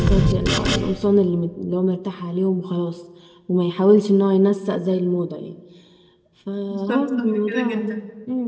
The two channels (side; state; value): both; identical; correlation 1.00